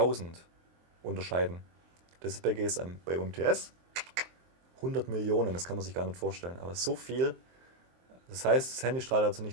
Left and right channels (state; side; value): late; left; 23 ms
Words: unterscheiden. Das ist bei GSM. Bei UMTS 100 Millionen, das kann man sich gar nicht vorstellen. Aber so viel. Das heißt, das Handy strahlt also